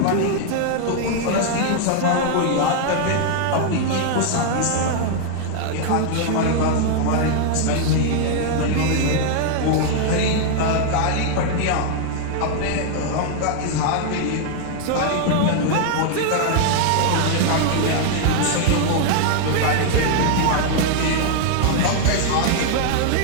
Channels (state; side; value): different; both; correlation 0.00